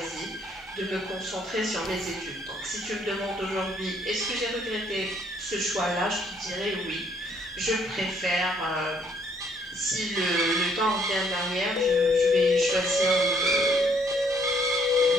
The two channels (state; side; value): normal; both; correlation 0.66